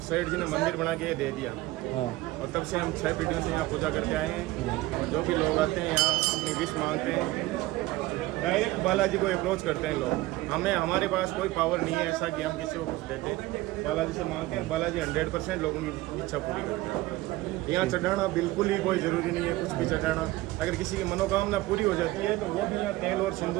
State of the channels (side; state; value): left; quieter; 18.3 dB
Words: सेठ जी ने मंदिर बना के दे दिया। और तब से हम 6 पीढ़ियों से यहाँ पूजा करते आए हैं। और जो भी लोग आते हैं यहाँ अपनी विश मांगते हैं, डायरेक्ट बालाजी को अप्रोच करते हैं लोग। हमारे पास कोई पावर नहीं है ऐसा कि हम किसी को कुछ देते, बालाजी से मांगते हैं, बालाजी 100% लोगों की इच्छा पूरी करते हैं। यहाँ चढ़ाना बिल्कुल ही कोई ज़रूरी नहीं है, कुछ भी चढ़ाना। अगर किसी की मनोकामना पूरी हो जाती है तो वो भी यहाँ तेल और